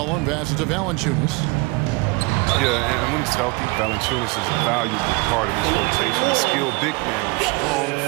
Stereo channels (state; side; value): quieter; left; 26.0 dB